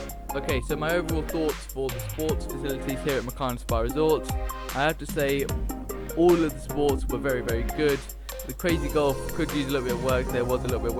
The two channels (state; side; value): identical; both; correlation 1.00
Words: Okay, so my overall thoughts for the sports facilities here at Mukarnas Spa Resort. I have to say, all of the sports were very, very good. The crazy golf could use a little bit of work. There was a little bit of